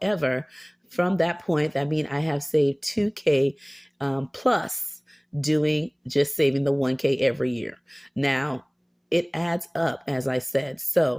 from that point, that means I have saved 2K plus doing just saving the 1K every year. Now, it adds up, as I said.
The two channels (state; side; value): identical; both; correlation 1.00